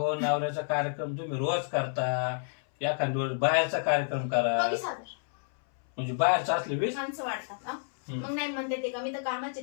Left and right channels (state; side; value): silent; right; 58 dB below the other